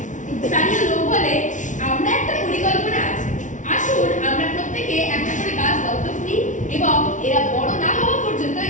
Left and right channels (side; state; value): right; late; 0.37 ms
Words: স্থানীয় লোক বলে, আমরা একটা পরিকল্পনা আছে। আসুন আমরা প্রত্যেকে একটা করে গাছ দত্তক নিই এবং এরা বড় না হওয়া পর্যন্ত